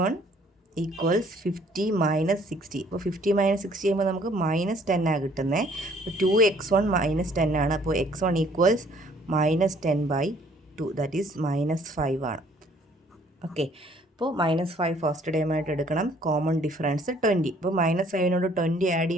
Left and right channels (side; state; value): both; normal; correlation 0.60